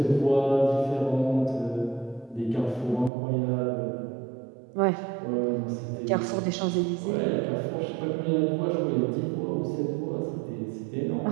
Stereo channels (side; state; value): left; drops out; at 3.1 s